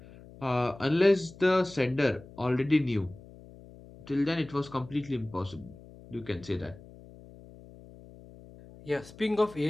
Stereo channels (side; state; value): left; noise; hum, 20 dB below the sound